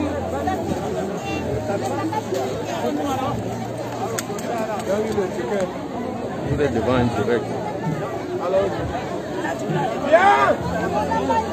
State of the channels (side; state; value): both; identical; correlation 1.00